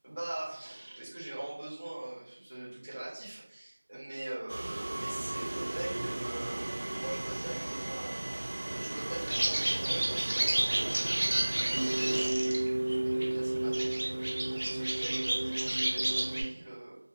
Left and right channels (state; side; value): inverted; both; correlation -1.00